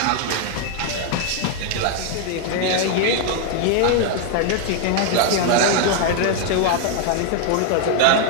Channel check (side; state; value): both; different; correlation 0.00